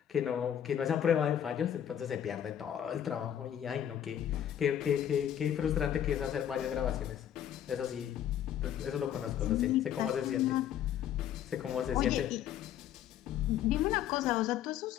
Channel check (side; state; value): right; quieter; 10.2 dB